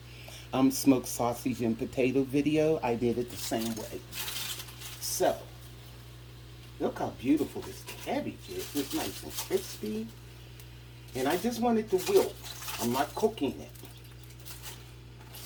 smoked sausage and potato video, I did it the same way. So, look how beautiful this cabbage is. It's nice and crispy. And I just want it to wilt. I'm not cooking it.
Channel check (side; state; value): both; identical; correlation 1.00